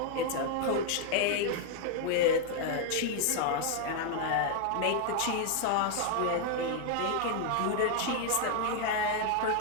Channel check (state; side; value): different; both; correlation 0.00